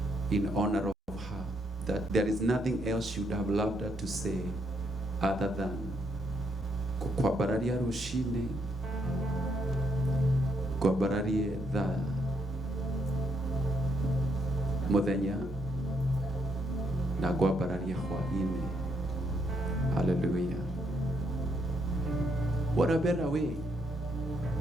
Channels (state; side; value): normal; both; correlation 0.75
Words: in honor of her, that there is nothing else she would have loved her to say other than kukwabararia rushine, kwabararie the muthenya na kwabararie hwaine. Hallelujah. What a better way